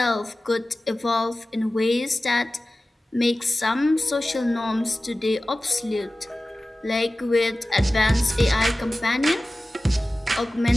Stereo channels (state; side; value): normal; both; correlation 0.96